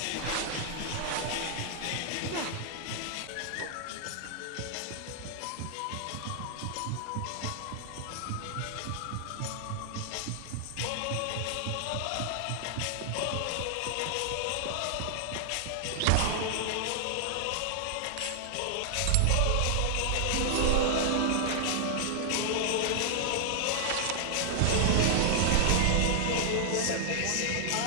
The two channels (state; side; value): different; both; correlation 0.00